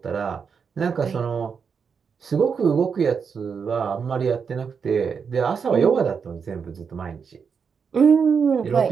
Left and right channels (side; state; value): left; quieter; 6.2 dB